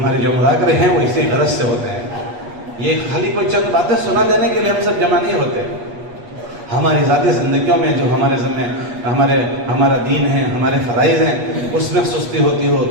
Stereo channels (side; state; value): left; late; 8.3 ms